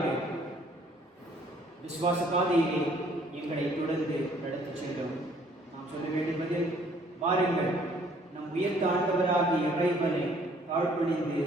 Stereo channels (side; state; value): both; normal; correlation 0.61